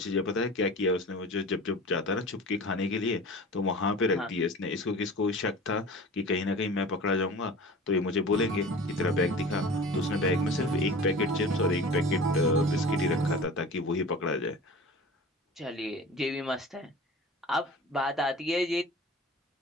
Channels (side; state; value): both; normal; correlation 0.38